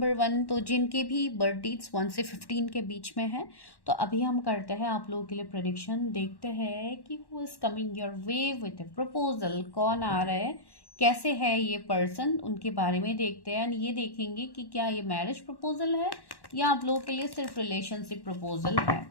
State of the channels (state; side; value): late; right; 1.1 ms